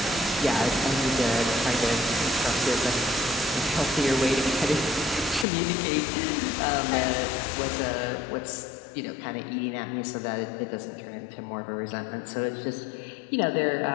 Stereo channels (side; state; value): right; drops out; at 5.5 s